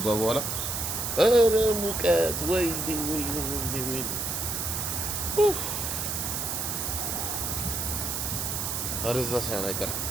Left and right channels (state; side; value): noise; right; hiss, 2 dB below the sound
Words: በኋላ። ኧረ ሙቀት ወይ አረዛ ሳይሆን አይቀርም።